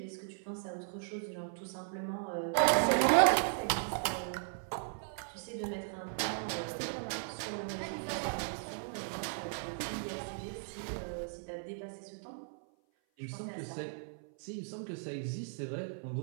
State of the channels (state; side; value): silent; left; 53 dB below the other